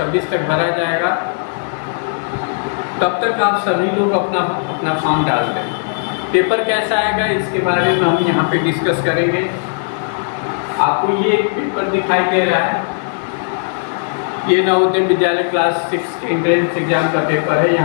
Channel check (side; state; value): right; silent; digital silence